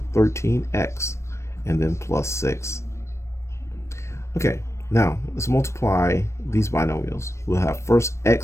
13x, and then plus 6. Okay, now let's multiply these binomials. We'll have first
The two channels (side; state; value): right; late; 0.13 ms